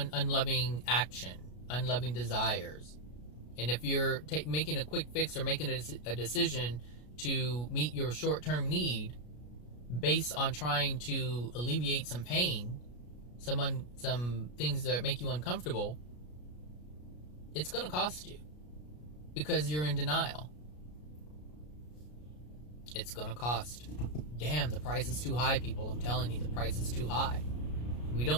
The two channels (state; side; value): late; right; 33 ms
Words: unloving action, unloving desires. And if you're making a quick fix or making a decision to meet your short-term need based on trying to alleviate some pain, some things that make you uncomfortable, it's going to cost you because you're in denial. It's going to cost. Damn, the price is too high, people. I'm telling you, the price is too high. We